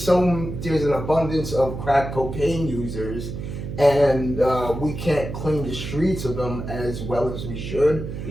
an abundance of crack cocaine users, and we can't clean the streets of them as well as we should.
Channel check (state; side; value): noise; right; hum, 7 dB below the sound